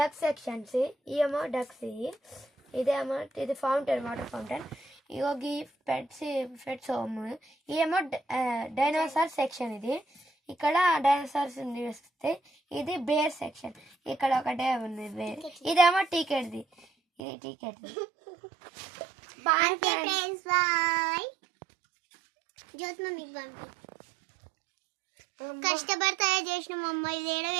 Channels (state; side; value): drops out; left; at 17.2 s